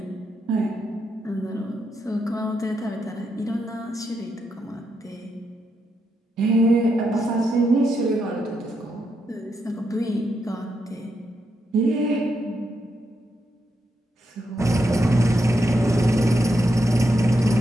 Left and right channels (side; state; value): both; normal; correlation 0.82